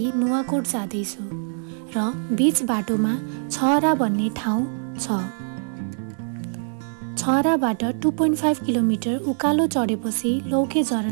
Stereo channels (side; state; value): left; silent; digital silence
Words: नुवाकोट जाँदैछु र बीच बाटोमा छहरा भन्ने ठाउँ छ। छहराबाट 2.5 किलोमिटर उकालो चढेपछि लौके